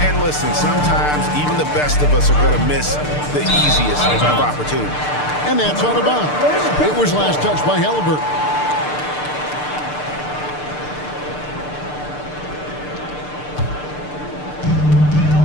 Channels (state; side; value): late; right; 6.7 ms